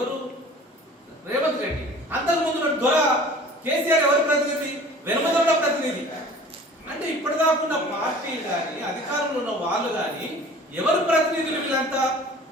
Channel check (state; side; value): normal; both; correlation 0.45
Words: రేవంత్ రెడ్డి. అంతకుముందు దొర కేసీఆర్ ఎవరి ప్రతినిధి? వెనుమదొండ ప్రతినిధి. అంటే ఇప్పటిదాకా ఉన్న పార్టీలు కానీ, అధికారంలో ఉన్న వాళ్ళు కానీ ఎవరు ప్రతినిధులు? వీళ్ళంతా